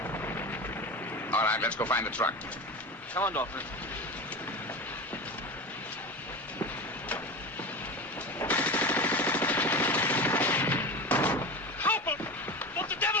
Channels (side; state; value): both; normal; correlation 0.27